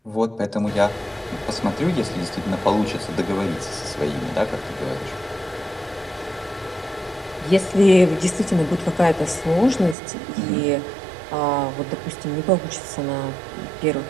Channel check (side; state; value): left; drops out; at 10.0 s